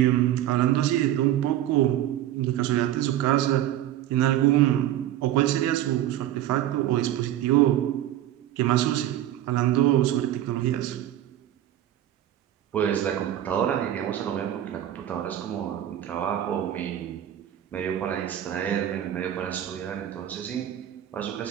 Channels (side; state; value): left; quieter; 12.4 dB